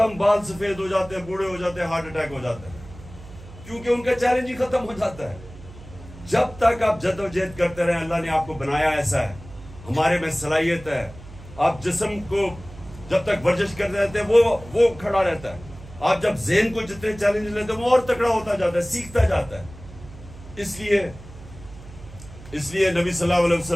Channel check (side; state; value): right; noise; hum, 17 dB below the sound